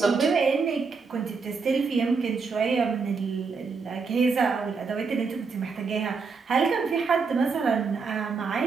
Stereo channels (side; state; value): left; quieter; 4.9 dB